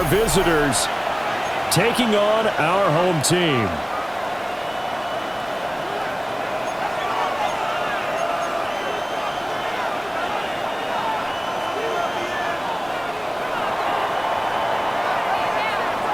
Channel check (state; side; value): noise; left; hum, 28 dB below the sound